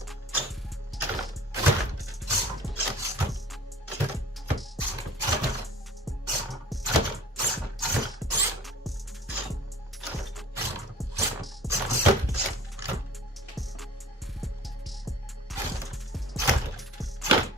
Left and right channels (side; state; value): both; normal; correlation 0.46